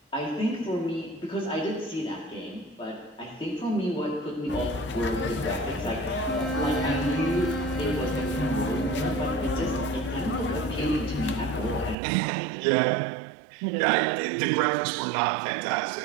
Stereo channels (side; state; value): left; drops out; at 12.0 s